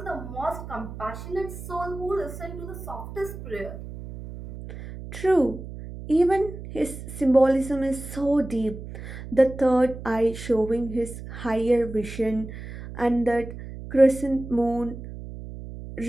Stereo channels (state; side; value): noise; right; hum, 11 dB below the sound